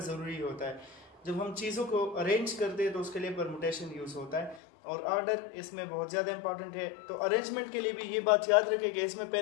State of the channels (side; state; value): right; drops out; at 4.6 s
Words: होता है। जब हम चीज़ों को अरेंज करते हैं तो उसके लिए परमुटेशन यूज़ होता है और ऑर्डर इसमें बहुत ज़्यादा इंपॉर्टेंट है। तो अरेंजमेंट के लिए भी ये बात याद रखें कि इसमें